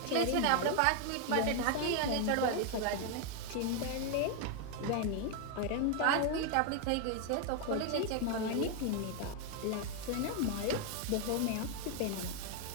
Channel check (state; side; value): different; both; correlation 0.00